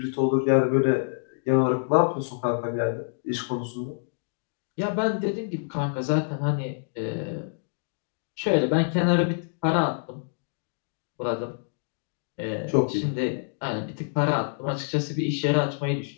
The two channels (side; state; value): right; silent; digital silence